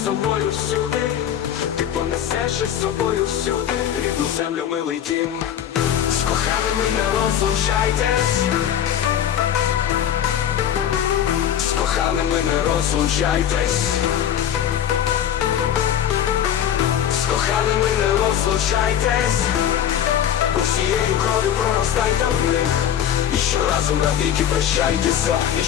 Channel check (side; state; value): right; quieter; 10.0 dB